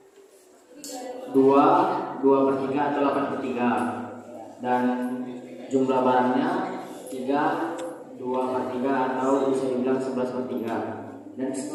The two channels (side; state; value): both; identical; correlation 1.00